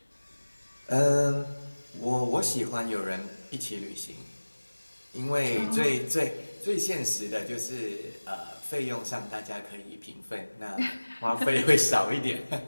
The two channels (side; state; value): both; inverted; correlation -1.00